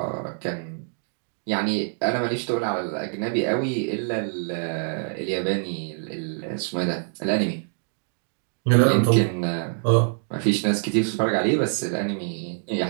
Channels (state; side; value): silent; left; 62 dB below the other